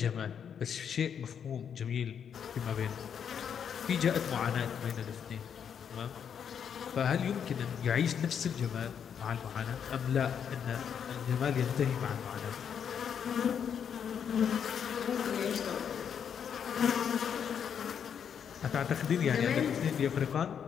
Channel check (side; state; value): right; quieter; 7.9 dB